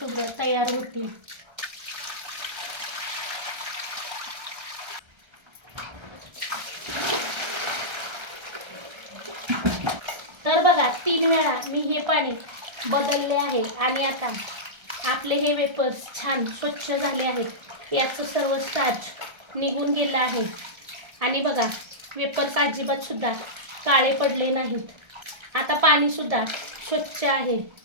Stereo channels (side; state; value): left; late; 1.3 ms